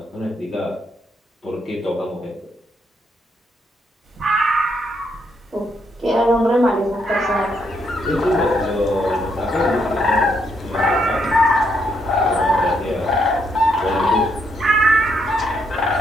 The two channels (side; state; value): both; normal; correlation 0.76